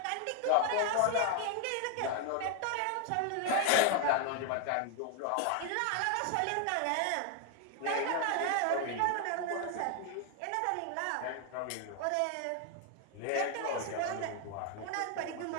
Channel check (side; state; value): both; different; correlation 0.00